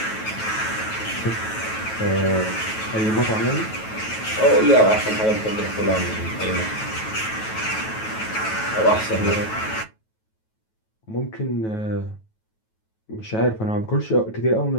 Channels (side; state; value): right; late; 9.2 ms